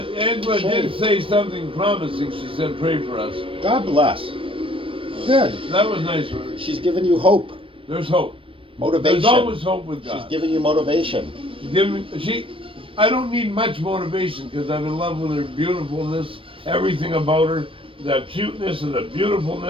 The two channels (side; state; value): left; late; 0.25 ms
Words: did Shave. say something promising. She said, "Pray for us." God bless. Good. That was nice of her. She's giving you hope, There's hope. motivation. There's always hope with She's God. giving you motivation. I don't need much motivation because I'm in love with her beautifulness, everything about her, the cuteness and the